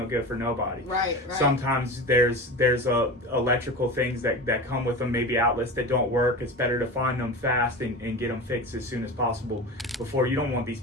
good for nobody. Right. Sometimes there's electrical things that come with them, maybe outlets that don't work. It's better to find them fast and get them fixed as soon as possible before you don't want these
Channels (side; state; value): both; normal; correlation 0.29